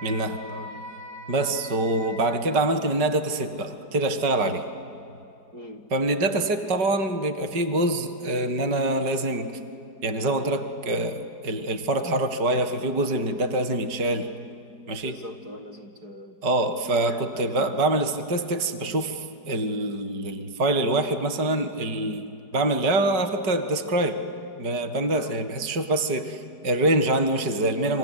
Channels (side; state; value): left; late; 5.2 ms